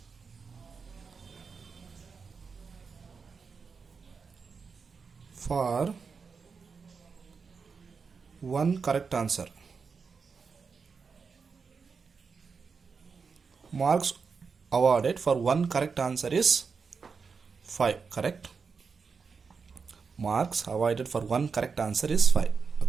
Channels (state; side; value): quieter; left; 5.3 dB